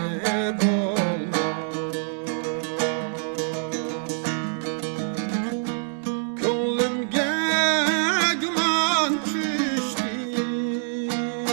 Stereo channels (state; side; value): silent; left; digital silence